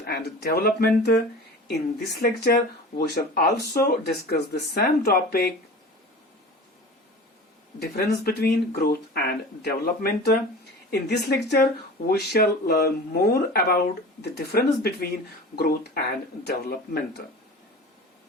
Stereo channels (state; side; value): normal; both; correlation 0.37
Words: and development. In this lecture, we shall also discuss the same topic, difference between growth and development. In this lecture, we shall learn more about the difference between growth and development.